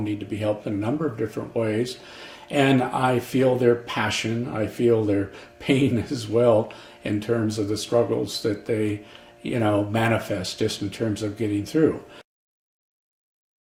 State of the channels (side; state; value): both; identical; correlation 1.00